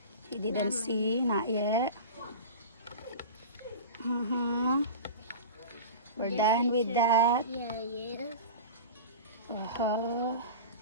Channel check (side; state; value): both; inverted; correlation -0.32